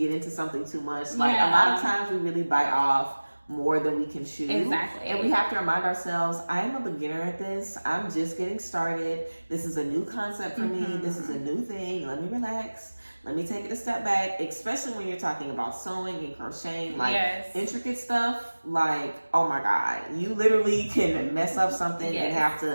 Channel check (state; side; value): inverted; both; correlation -1.00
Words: into something too much. Like a lot of times we really bite off more than we can chew. Exactly. And we have to remind ourselves, I am a beginner at this. I'm just getting started. This is a new concept for me. This is a new thing. Let me relax. Let me take it a step back, especially when you're talking about sewing and crocheting, like intricate stuff. Like, oh my God, you literally can mess up something and have